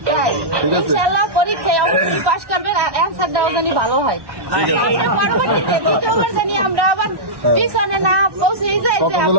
ঠিক আছে, ইনশাআল্লাহ পরীক্ষায় অবশ্যই পাস করবেন, অ্যান্সার দেওয়া জানি ভালো হয়। পরবর্তীতে দ্বিতীয়বার জানি আমরা আবার পিছনে না পৌঁছে যাই।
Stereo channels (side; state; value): left; late; 1.1 ms